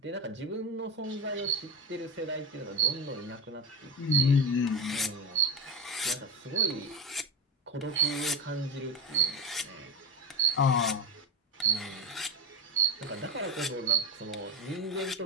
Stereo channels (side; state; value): both; normal; correlation 0.15